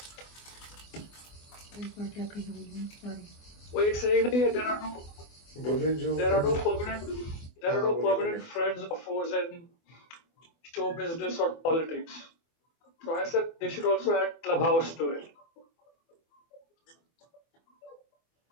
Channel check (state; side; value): late; right; 24 ms